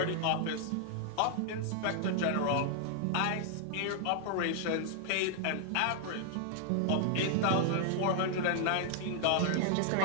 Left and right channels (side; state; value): both; different; correlation -0.01